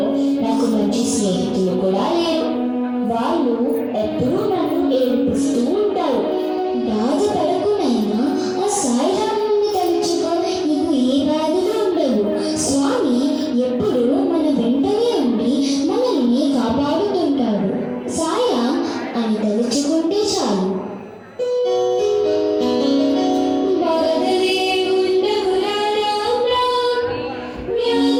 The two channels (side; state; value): both; identical; correlation 1.00